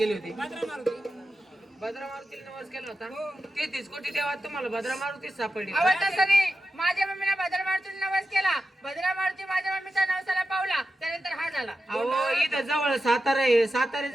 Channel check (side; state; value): both; normal; correlation 0.91